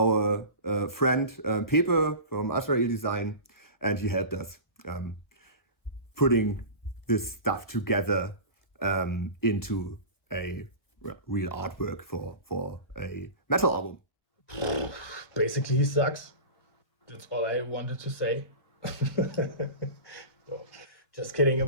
friend Pepe from Azrael Design, and he helped us putting this stuff together into a real artwork for a metal album. Basically, he sucks. That's all I wanted to say. No, just kidding.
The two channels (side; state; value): right; late; 1.3 ms